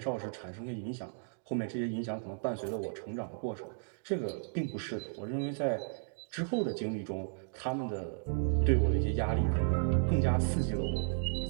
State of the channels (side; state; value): left; silent; digital silence